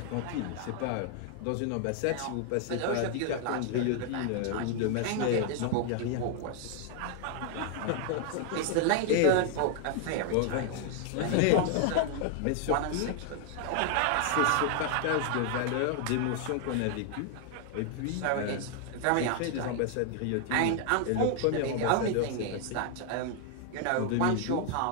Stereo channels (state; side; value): different; both; correlation 0.00